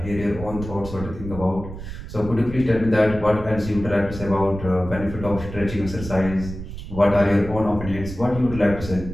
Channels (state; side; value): noise; right; rumble, 10 dB below the sound